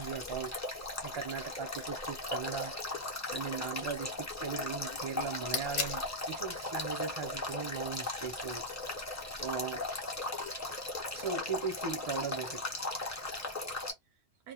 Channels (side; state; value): both; normal; correlation -0.05